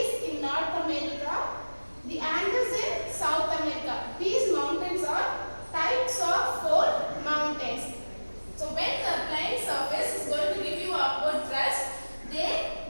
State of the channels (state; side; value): inverted; both; correlation -1.00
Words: in North America, the Andes in South America. These mountains are types of fold mountains. So when the plain surface is going to give you upward thrust, they